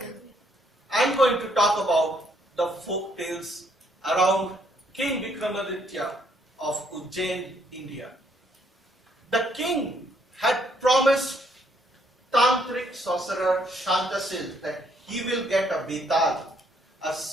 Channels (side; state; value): both; normal; correlation 0.69